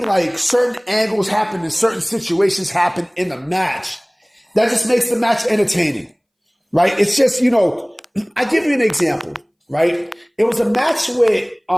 certain angles happen and certain situations happen in the match. That just makes the match entertaining, right? It's just, I give you an example, right? It was a match with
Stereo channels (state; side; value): identical; both; correlation 1.00